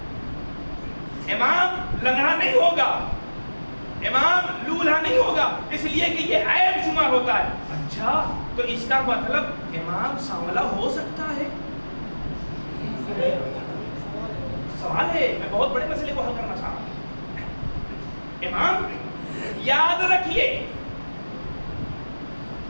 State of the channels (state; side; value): inverted; both; correlation -1.00